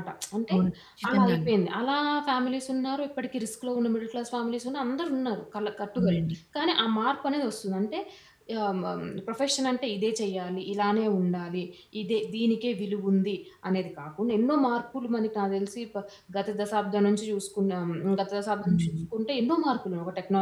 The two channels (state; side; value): identical; both; correlation 1.00